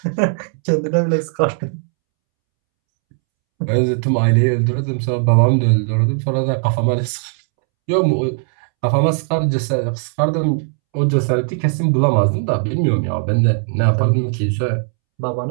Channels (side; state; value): left; silent; 68 dB below the other